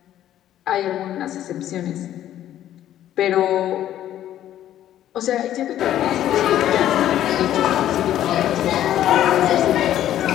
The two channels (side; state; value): right; quieter; 12.0 dB